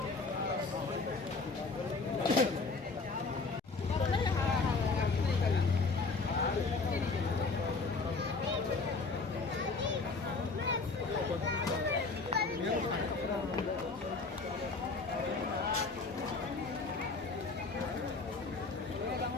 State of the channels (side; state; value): right; quieter; 4.0 dB